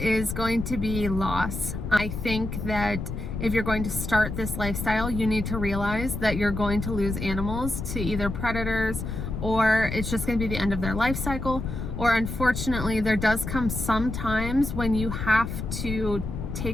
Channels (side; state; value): left; noise; rumble, 5 dB below the sound